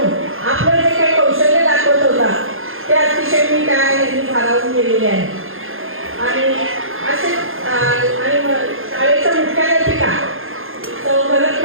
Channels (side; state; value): left; late; 0.60 ms